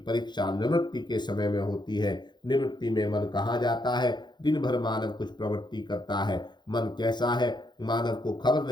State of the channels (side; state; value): right; late; 0.21 ms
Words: निवृत्ति के समय में होती है। निवृत्ति में मन कहाँ जाता है? दिन भर मानव कुछ प्रवृत्ति करता है। मन कैसा है, मानव को खबर